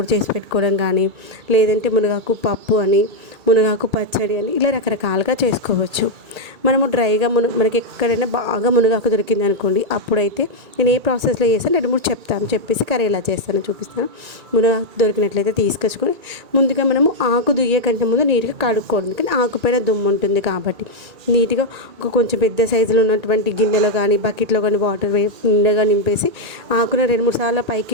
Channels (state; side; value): late; left; 1.8 ms